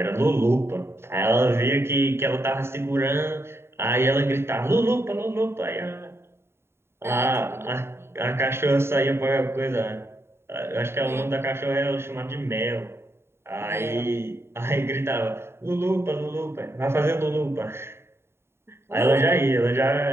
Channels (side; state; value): left; late; 0.12 ms